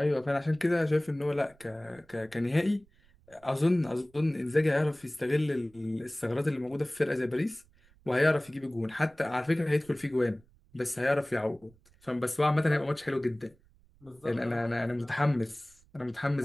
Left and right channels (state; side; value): noise; right; rumble, 29 dB below the sound